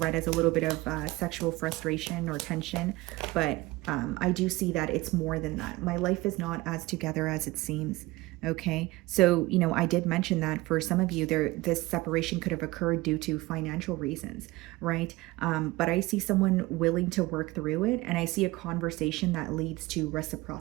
as a little bit of sexual frustration or tension, but I do see that it's more than that. My life is not as together as it seems. Okay, so I did mention that for some of you, this separation could have occurred due to financial reasons, right? But I see someone willing to work through it, and I see a conversation that leads to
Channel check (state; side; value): quieter; left; 20.2 dB